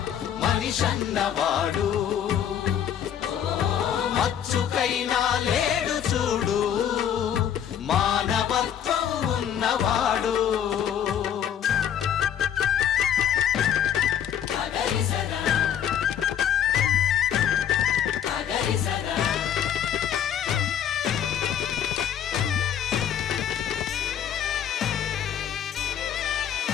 మనిషన్నవాడు, మచ్చుకైనా లేడు చూడు మానవత్వం ఉన్నవాడు.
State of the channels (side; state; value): right; quieter; 9.3 dB